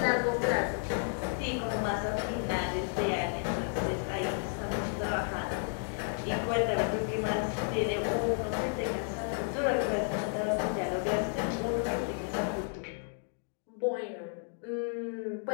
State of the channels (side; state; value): right; silent; 56 dB below the other